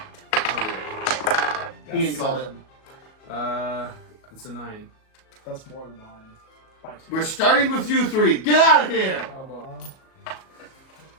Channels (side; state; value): right; late; 37 ms